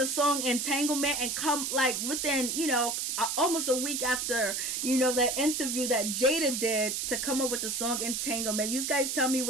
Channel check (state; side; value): noise; right; hiss, 1 dB below the sound